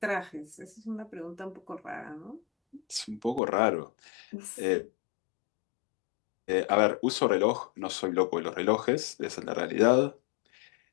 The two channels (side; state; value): right; drops out; at 3.4 s